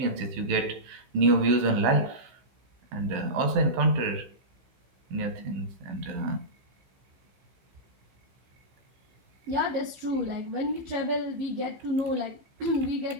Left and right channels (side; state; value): left; late; 16 ms